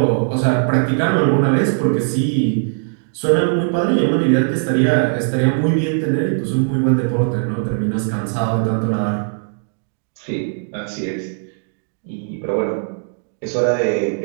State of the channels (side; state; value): left; silent; digital silence